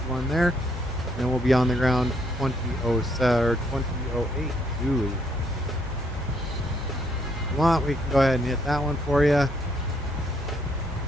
there. And we'll be on the ground 2007 or 2008. Ooh. If you want, we can go ahead and hit that one for you.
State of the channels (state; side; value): normal; both; correlation 0.71